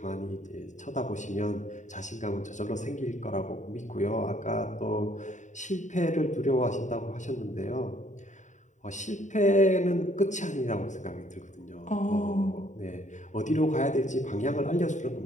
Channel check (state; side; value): late; right; 0.35 ms